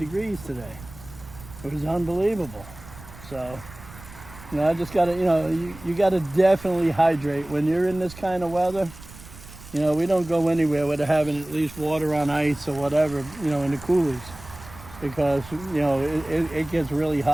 today. It was unbelievable. So, you know, I just gotta, you know, you gotta definitely hydrate when you're in this kind of weather. You know, we don't go anywhere without having at least water on ice or whatever, you know, in the coolers, because, you know, it gets really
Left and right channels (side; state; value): right; noise; rumble, 18 dB below the sound